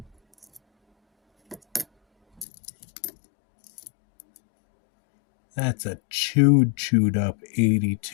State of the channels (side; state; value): right; drops out; at 2.5 s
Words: That's a chewed up